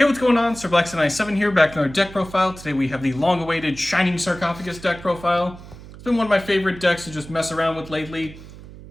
what's going on? SirBlackson97 here, back in our deck profile. Today we have the long-awaited Shining Sarcophagus deck profile. It's been one of my favorite decks to just mess around with lately.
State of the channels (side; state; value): right; noise; hum, 17 dB below the sound